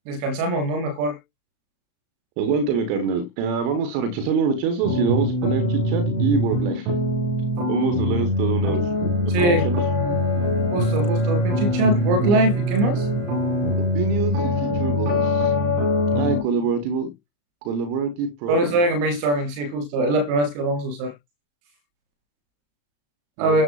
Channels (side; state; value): left; late; 34 ms